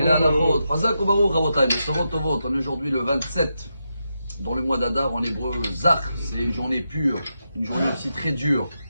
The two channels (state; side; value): inverted; both; correlation -0.86